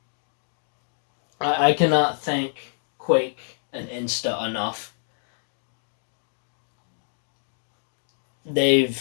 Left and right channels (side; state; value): right; silent; 60 dB below the other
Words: thank Quake and Insta enough.